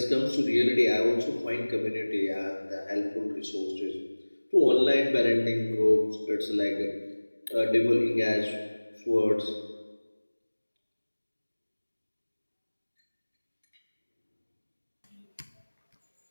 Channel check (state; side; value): inverted; both; correlation -1.00